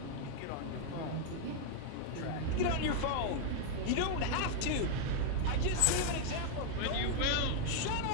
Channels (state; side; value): different; both; correlation 0.00